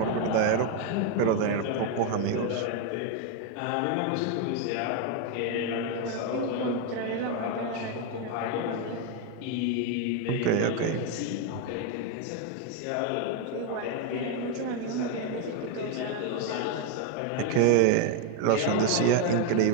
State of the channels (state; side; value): different; both; correlation 0.01